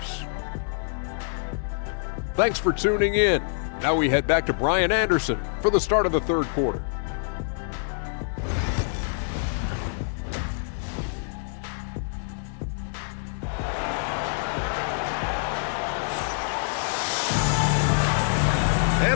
Thanks for tuning in. Now we head back to Brian Anderson for the start of the third quarter.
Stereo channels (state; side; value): silent; right; digital silence